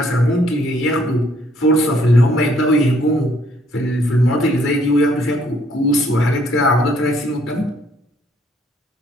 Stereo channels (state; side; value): normal; both; correlation 0.66